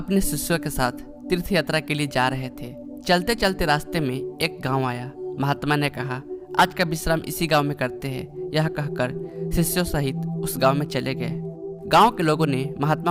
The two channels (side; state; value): both; identical; correlation 1.00